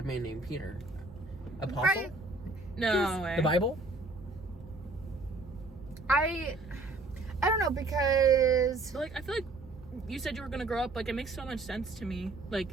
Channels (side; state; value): left; quieter; 3.1 dB